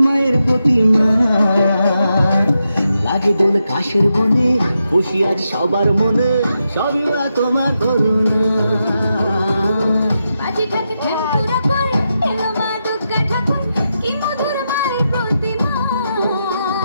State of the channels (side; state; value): both; inverted; correlation -0.86